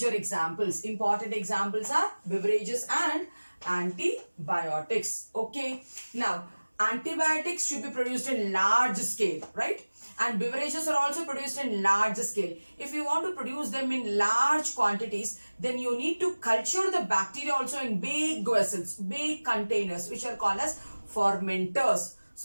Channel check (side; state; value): both; inverted; correlation -1.00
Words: examples. Important examples are beverages and antibiotics. Okay. Now, antibiotics should be produced in large scale, right? And beverages are also produced in large scale. If you want to produce them in large quantities, then you need to culture the bacteria also in big vessels, big containers, which are called as fermenters.